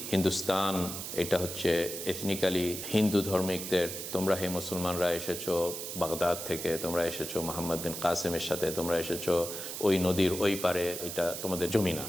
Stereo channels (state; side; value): noise; right; hiss, 7 dB below the sound